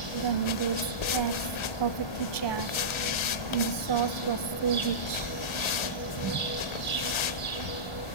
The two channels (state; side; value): late; right; 1.4 ms